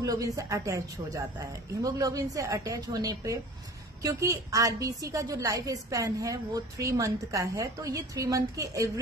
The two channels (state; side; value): normal; both; correlation 0.42